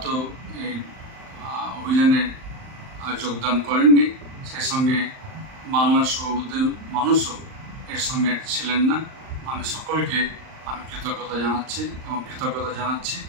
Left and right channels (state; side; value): late; left; 38 ms